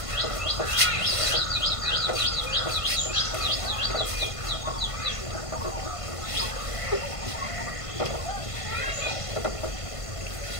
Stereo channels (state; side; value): late; right; 1.5 ms